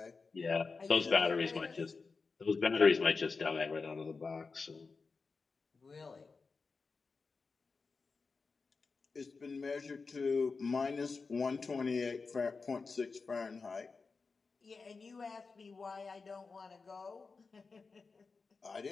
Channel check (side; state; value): right; quieter; 4.5 dB